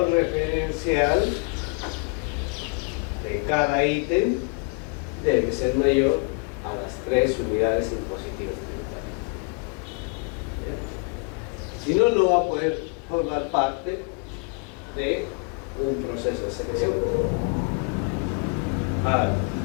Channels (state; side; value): quieter; right; 32.9 dB